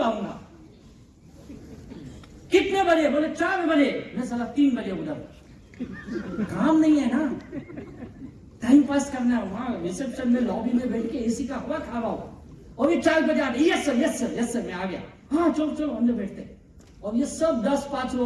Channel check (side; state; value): both; identical; correlation 1.00